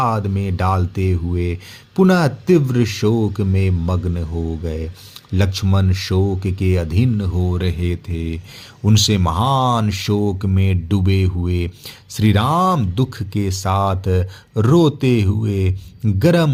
में डालते हुए पुनः तीव्र शोक में मग्न हो गए। लक्ष्मण शोक के अधीन हो रहे थे। उनसे महान शोक में डूबे हुए श्री राम दुख के साथ रोते हुए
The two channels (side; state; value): both; identical; correlation 1.00